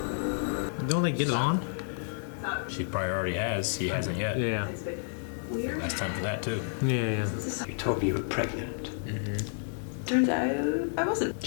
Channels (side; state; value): right; silent; digital silence